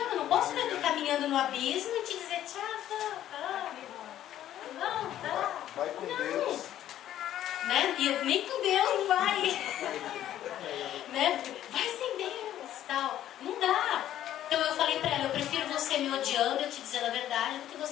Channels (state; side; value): quieter; right; 12.0 dB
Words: eu não posso ver tu caminhando no abismo e te dizer, tchau, não, tá. Vai com não. Deus. Né? E nem com Deus não vai. Né? Vai sem Deus, tal. Não dá. Então eu falei pra ela, eu prefiro você me odiando, eu te dizendo a verdade, do que